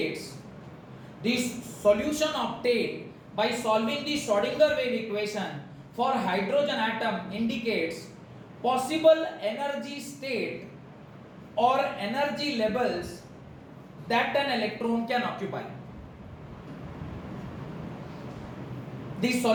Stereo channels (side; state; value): both; identical; correlation 1.00